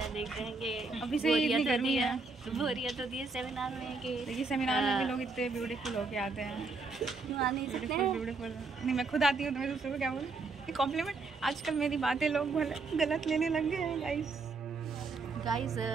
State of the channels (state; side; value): quieter; left; 3.9 dB